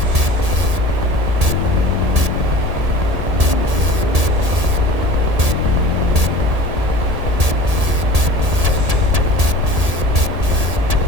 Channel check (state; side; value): late; left; 1.8 ms